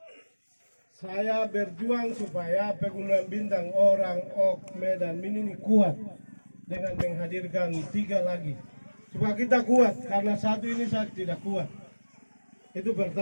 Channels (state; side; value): inverted; both; correlation -1.00